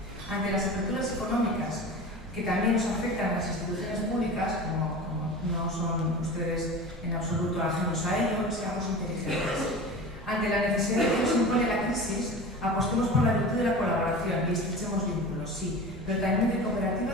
Ante las aperturas económicas que también nos afectan a las instituciones públicas, como no son ustedes en absoluto ajenos a ello, seamos inteligentes. Ante la necesidad que nos impone la crisis, apostemos por la virtud de la colaboración y estrechemos vínculos, sí, pero también de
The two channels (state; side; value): normal; both; correlation 0.34